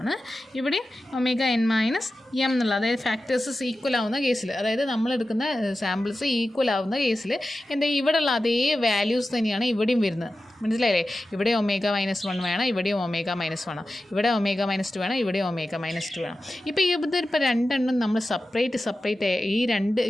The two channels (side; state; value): both; normal; correlation 0.93